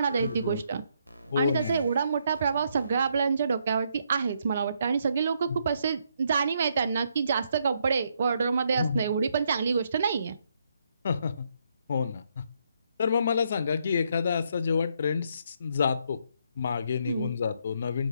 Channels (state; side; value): inverted; both; correlation -0.74